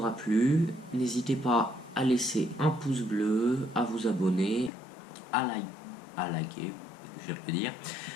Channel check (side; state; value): right; drops out; at 4.7 s